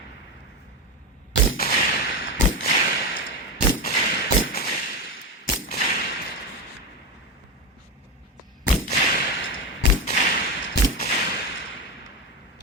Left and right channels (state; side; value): normal; both; correlation 0.15